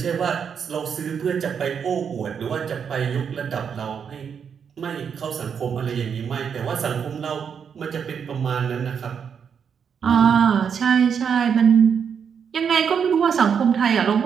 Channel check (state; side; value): quieter; left; 7.1 dB